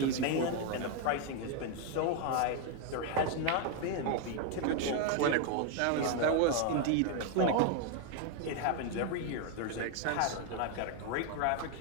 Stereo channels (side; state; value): both; different; correlation 0.01